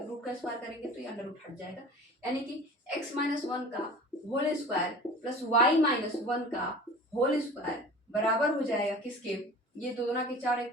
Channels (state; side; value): normal; both; correlation 0.40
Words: हैं, रूट का स्क्वायर करेंगे तो ये अंडर रूट हट जाएगा, यानी कि x माइनस 1 का whole square plus y minus 1 का होल स्क्वायर बराबर हो जाएगा किसके, ये 2 दूना के 4